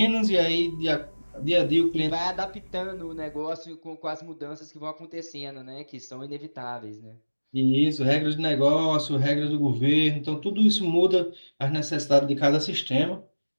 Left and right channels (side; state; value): both; inverted; correlation -1.00